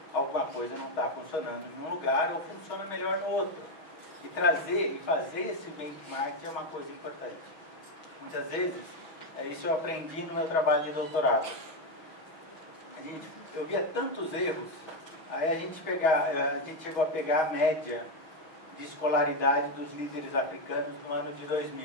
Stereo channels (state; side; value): late; right; 6.2 ms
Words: alguma coisa não está funcionando em um lugar ou funciona melhor no outro. E trazer e fazer esse benchmark é uma coisa importante. Muitas vezes, isso eu aprendi no meu trabalho de doutorado. Eu via tantos erros, aí a gente chegou a pegar a média de escolaridade dos líderes africanos no ano de